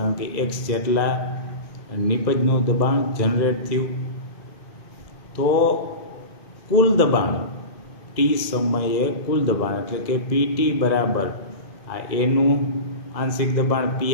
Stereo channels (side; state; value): right; late; 2.0 ms